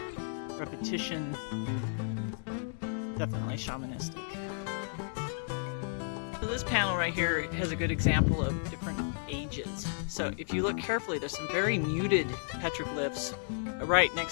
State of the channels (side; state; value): right; silent; digital silence